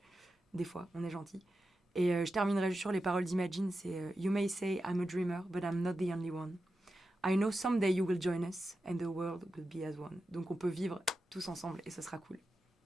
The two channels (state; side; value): normal; both; correlation 0.90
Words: des fois, on est gentils. Et je terminerai juste sur les paroles d'Imagine, c'est You may say I'm a dreamer, but I'm not the only one. I know someday you will join us, and the world will be as one. Donc on peut vivre tous ensemble, et ce sera cool.